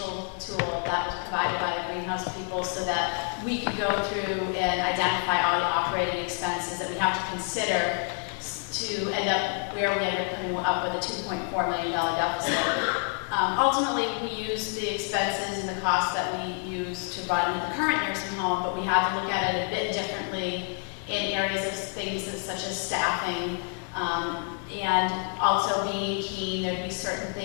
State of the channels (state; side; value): quieter; right; 39.2 dB